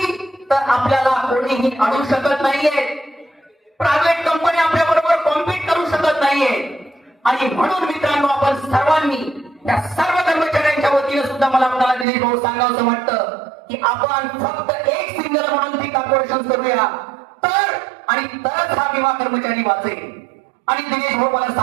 तर आपल्याला कोणीही अडू शकत नाहीये. प्रायव्हेट कंपनी आपल्या बरोबर कॉम्पीट करू शकत नाहीये. आणि म्हणून मित्रांनो, आपण सर्वांनी त्या सर्व कर्मचाऱ्यांच्या वतीने सुद्धा मला आपल्याला दिलीप भाऊ सांगावं वाटतं की आपण फक्त एक सिंगल म्हणून ती कॉर्पोरेशन करूया तर आणि तरच हा विमा कर्मचारी वाचेल. आणि दिनेश भाऊ मला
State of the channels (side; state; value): left; drops out; at 12.1 s